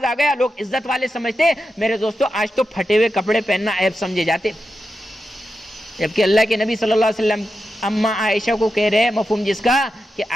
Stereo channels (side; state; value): both; normal; correlation 0.89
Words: آ گیا لوگ عزت والے سمجھتے۔ میرے دوستو آج تو پھٹے ہوئے کپڑے پہننا عیب سمجھے جاتے، جبکہ اللہ کے نبی صلی اللہ علیہ وسلم اماں عائشہ کو کہہ رہے ہیں مفہوم جس کا کہ